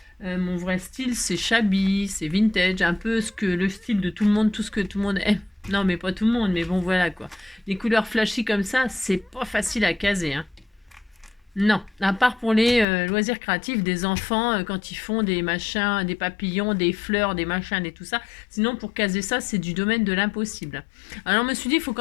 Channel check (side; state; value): right; drops out; at 12.9 s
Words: Mon vrai style, c'est shabby, c'est vintage, un peu le style de tout le monde, tout ce que tout le monde aime. Non, mais pas tout le monde, mais bon, voilà quoi. Les couleurs flashy comme ça, c'est pas facile à caser. Non, à part pour les loisirs créatifs des enfants, quand ils font des machins, des papillons, des fleurs, des machins, et tout ça. Sinon, pour caser ça, c'est du domaine de l'impossible. Alors, je me suis dit, il faut